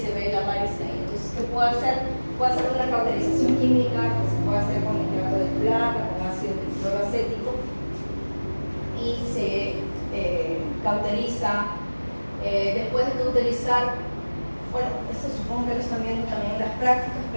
ve la varice ahí. Entonces, ¿qué puedo hacer? Puedo hacer una cauterización química que se puede hacer con nitrato de plata, con ácido cloroacético, y se cauteriza. Después de cauterizar, bueno, esto supongo que es también en las prácticas,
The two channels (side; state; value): both; inverted; correlation -1.00